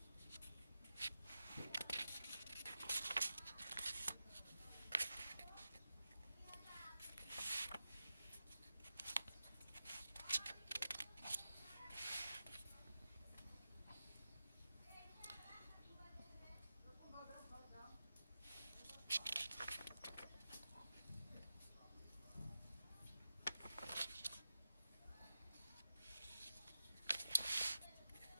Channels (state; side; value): inverted; both; correlation -0.92